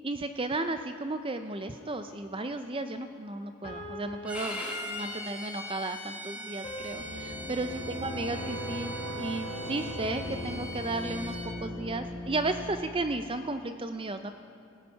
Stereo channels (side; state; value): both; normal; correlation 0.38